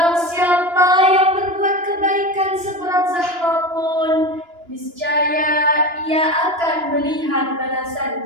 siapa yang berbuat kebaikan seberat zahra pun, niscaya ia akan melihat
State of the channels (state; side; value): late; left; 2.9 ms